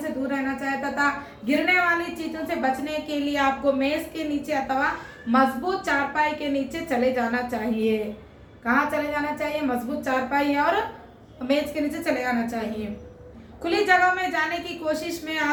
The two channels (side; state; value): both; identical; correlation 1.00